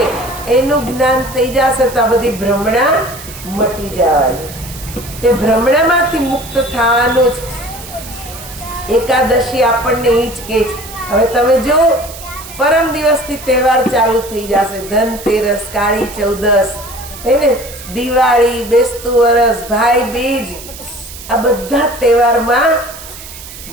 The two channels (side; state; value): right; noise; hiss, 14 dB below the sound